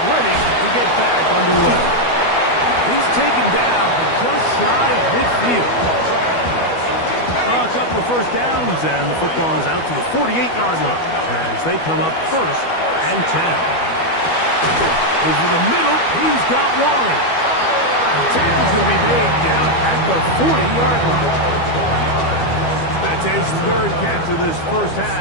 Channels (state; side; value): late; right; 12 ms